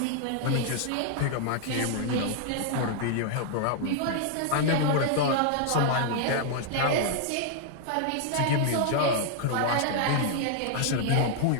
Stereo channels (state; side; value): different; both; correlation -0.01